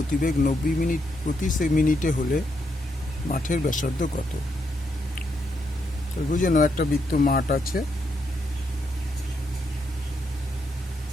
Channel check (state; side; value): normal; both; correlation 0.79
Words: 90 মিনিট প্রতি মিনিটে হলে মাঠের ব্যাসার্ধ কত? বুঝে নাও, একটা বৃত্ত মাঠ আছে,